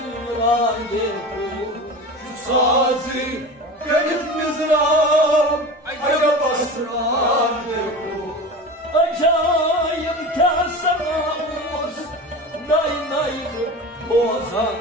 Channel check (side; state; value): both; normal; correlation 0.31